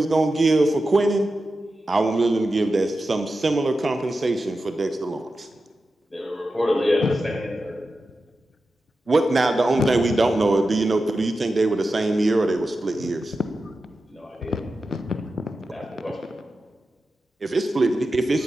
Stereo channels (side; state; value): both; normal; correlation 0.91